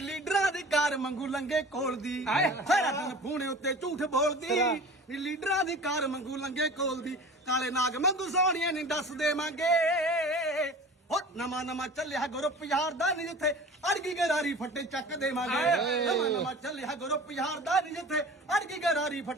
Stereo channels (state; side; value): normal; both; correlation 0.39